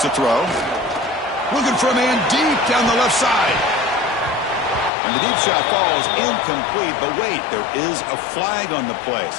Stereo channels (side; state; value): right; drops out; at 4.9 s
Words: to throw. Looking for a man deep down the left side. And the deep shot falls incomplete. But wait, there is a flag on the play,